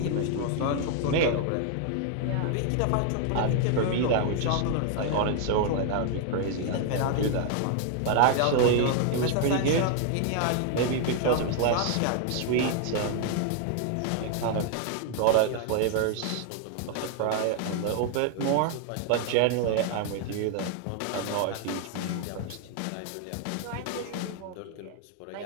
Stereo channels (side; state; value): both; different; correlation 0.00